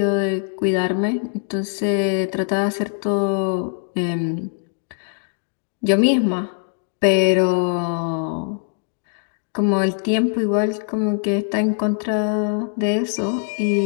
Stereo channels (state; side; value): silent; right; digital silence